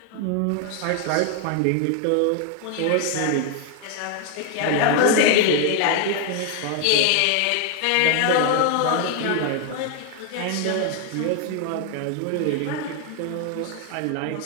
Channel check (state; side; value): different; both; correlation 0.00